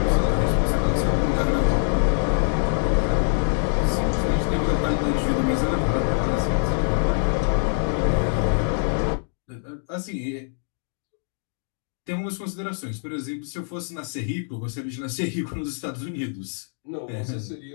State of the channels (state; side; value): silent; right; digital silence